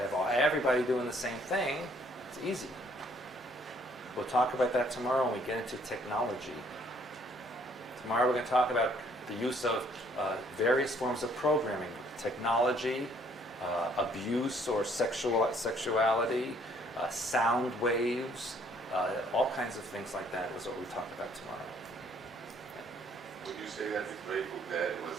have everybody doing the same thing, it's easy. We'll talk about that tomorrow when we get into technology. Tomorrow we're going to talk about the use of various forms of programming, technology, abuse or sexuality, sound waves, all kinds of things like that is what we talk about tomorrow. Would you say that the Grateful Dead was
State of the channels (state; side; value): normal; both; correlation 0.63